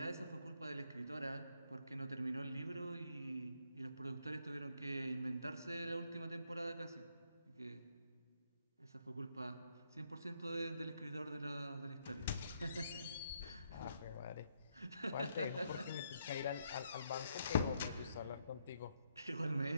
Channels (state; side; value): inverted; both; correlation -0.75